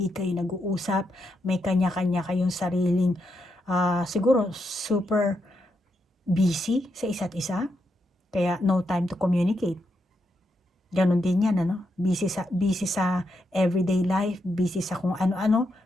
kayo nag-uusap, may kanya-kanya kayong sariling, siguro super busy sa isa't isa, kaya no time to communicate. Ganon din yan, busy sa everyday life, busy sa kung ano-ano,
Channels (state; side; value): normal; both; correlation 0.82